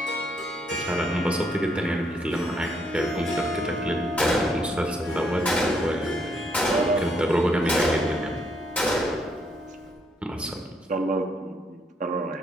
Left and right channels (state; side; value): normal; both; correlation 0.73